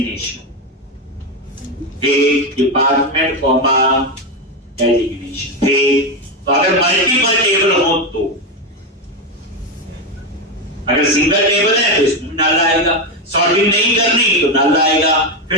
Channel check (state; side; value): normal; both; correlation 0.11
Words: department comma designation. तो अगर मल्टीपल टेबल हो तो, अगर सिंगल टेबल है तो इसमें नल आएगा। सॉर्टिंग नहीं करनी तो नल आएगा,